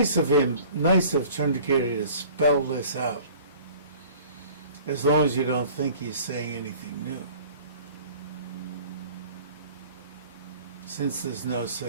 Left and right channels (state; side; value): inverted; both; correlation -0.48